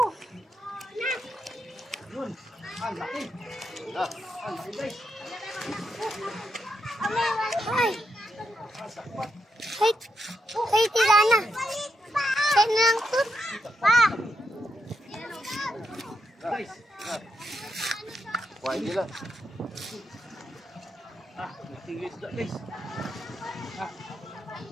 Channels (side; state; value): both; normal; correlation 0.83